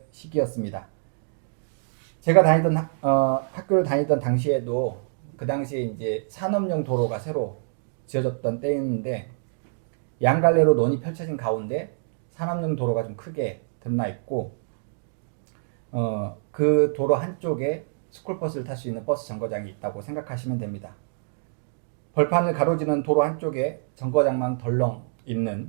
시기였습니다. 제가 학교를 다니던 당시에도 그 당시에 이제 산업용 도로가 새로 지어졌던 때였는데 양갈래로 논이 펼쳐진 가운데 산업용 도로가 좀 크게 드러나 있고 그 도로 한쪽에 스쿨버스를 탈 수 있는 버스 정거장이 있다고 생각하시면 됩니다. 벌판을 가로지르는 도로 한쪽에 정거장만 덜렁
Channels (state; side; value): silent; left; digital silence